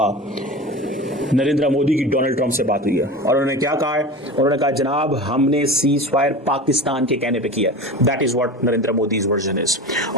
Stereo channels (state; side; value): normal; both; correlation 0.31